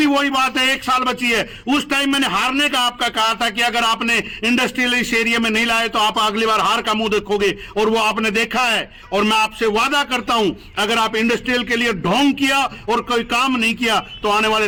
वही बात है, 1 साल बची है। उस टाइम मैंने हारने का आपका कहा था कि अगर आपने इंडस्ट्रियल इस एरिया में नहीं लाए तो आप अगली बार हार का मुंह देखोगे, और वो आपने देखा है। और मैं आपसे वादा करता हूं, अगर आप इंडस्ट्रियल के लिए ढोंग किया और कोई काम नहीं किया तो आने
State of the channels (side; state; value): both; identical; correlation 1.00